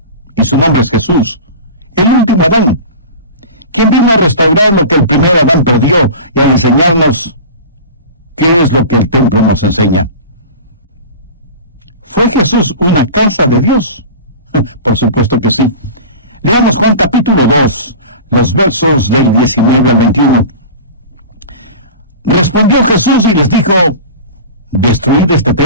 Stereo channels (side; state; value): both; inverted; correlation -0.34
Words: y su nombre es Jesús, el último Adán, quien vino a restaurar lo que el primer Adán perdió y a enseñarnos qué es lo que el templo nos enseña. ¿Fue Jesús una casa de Dios? Por supuesto que sí. Leamos Juan capítulo 2, los versos del 19 al 21. Respondió Jesús y les dijo: «destruid este